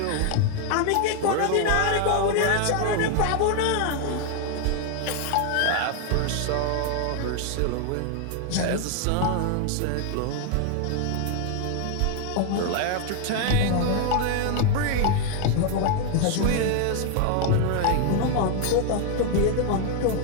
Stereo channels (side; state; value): both; different; correlation 0.00